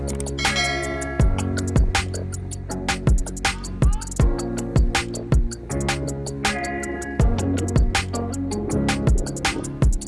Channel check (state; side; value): identical; both; correlation 1.00